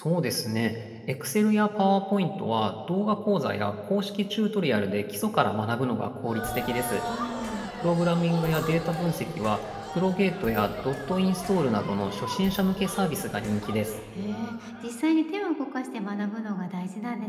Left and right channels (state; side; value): identical; both; correlation 1.00